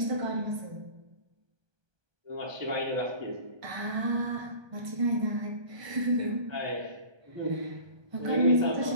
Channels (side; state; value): left; late; 1.3 ms